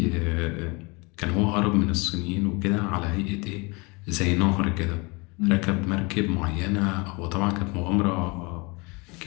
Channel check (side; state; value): right; quieter; 27.8 dB